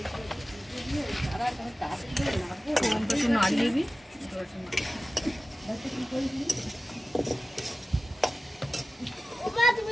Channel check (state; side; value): normal; both; correlation 0.96